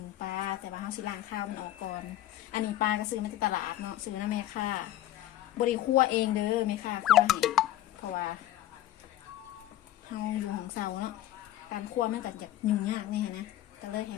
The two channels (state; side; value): quieter; right; 13.3 dB